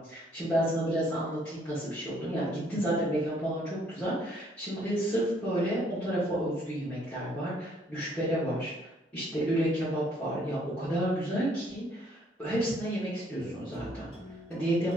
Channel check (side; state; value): both; normal; correlation 0.65